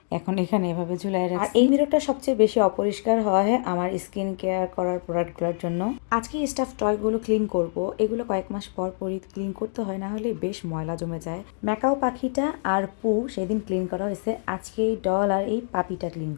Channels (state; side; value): silent; right; digital silence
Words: এখন এখানে এভাবে ঝুলাই রাখছি। আর এই মিররটা সবচেয়ে বেশি অপরিষ্কার হয় আমার স্কিন কেয়ার করার প্রোডাক্টগুলোর জন্য। আজকে স্টাফ টয়গুলো ক্লিন করব, এগুলো কয়েক মাস পর পরই ক্লিন করতে হয়, না হলে বেশ ময়লা জমে যায়। ম্যাকাও পাখিটা আর পু সেদিন ক্লিন করা হয়েছে, আজকে এই ডল আর এই পাপিটা ক্লিন